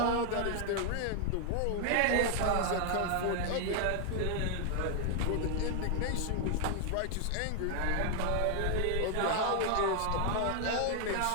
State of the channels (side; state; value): both; different; correlation 0.00